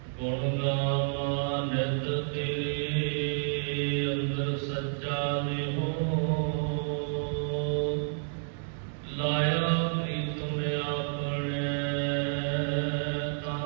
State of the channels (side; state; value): left; silent; digital silence